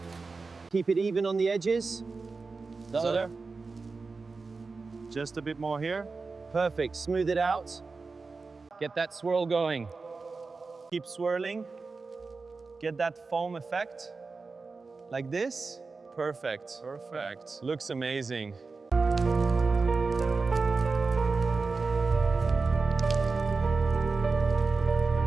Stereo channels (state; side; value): quieter; left; 4.2 dB